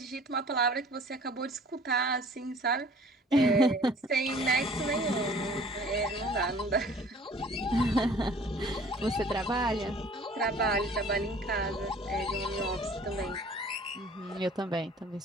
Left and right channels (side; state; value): both; normal; correlation 0.51